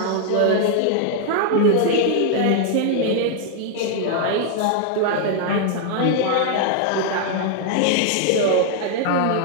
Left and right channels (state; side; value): different; both; correlation 0.00